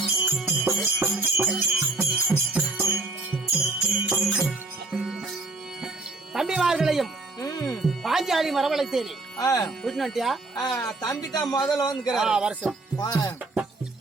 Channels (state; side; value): quieter; left; 3.2 dB